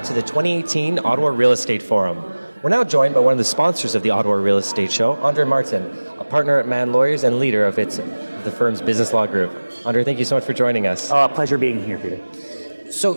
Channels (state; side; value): inverted; both; correlation -1.00